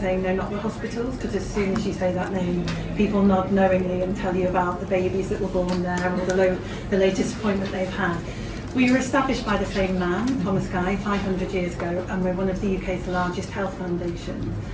saying no, not the hospitals, because as soon as you say that name, people nod knowingly and tell you about the babies that were born there or the latest appointment they've had. We were established by the same man, Thomas Guy, 500 years ago, and we're one of the UK's largest health foundations.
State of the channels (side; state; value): both; identical; correlation 1.00